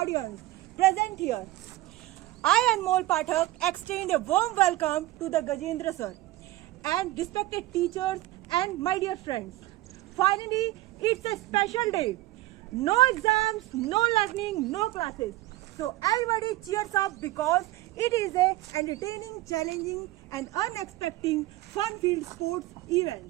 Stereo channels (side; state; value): left; quieter; 17.3 dB